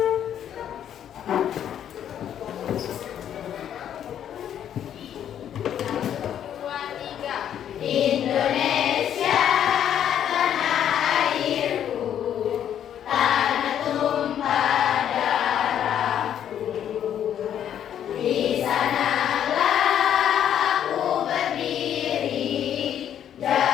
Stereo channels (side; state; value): right; quieter; 9.9 dB